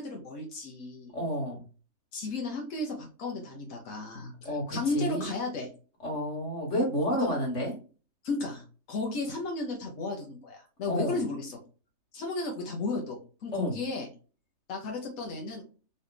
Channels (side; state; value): right; late; 3.3 ms